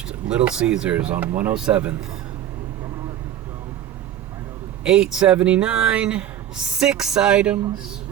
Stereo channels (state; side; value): quieter; left; 11.0 dB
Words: Little Caesars on 107th. $8.79, 6 items.